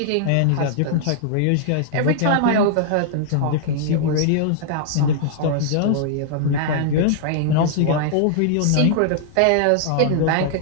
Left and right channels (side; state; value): both; different; correlation -0.01